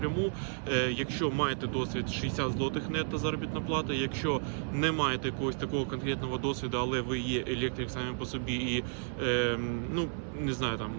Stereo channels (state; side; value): silent; left; 56 dB below the other